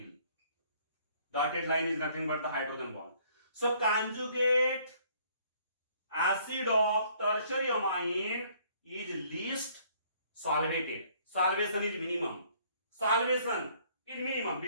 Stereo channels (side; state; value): both; inverted; correlation -0.61